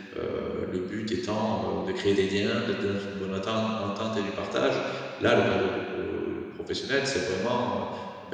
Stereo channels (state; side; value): identical; both; correlation 1.00